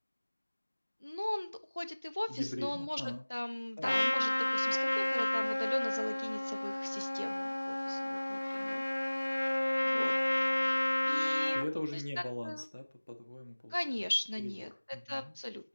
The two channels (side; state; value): both; inverted; correlation -1.00